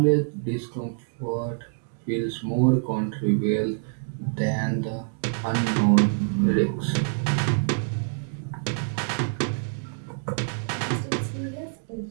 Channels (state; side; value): silent; left; digital silence